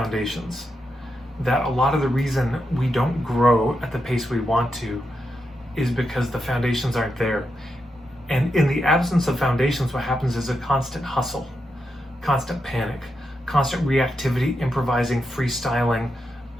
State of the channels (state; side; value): normal; both; correlation 0.85